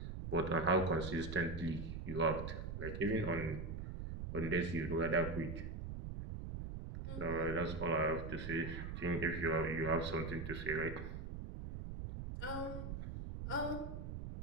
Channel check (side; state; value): right; noise; rumble, 6 dB below the sound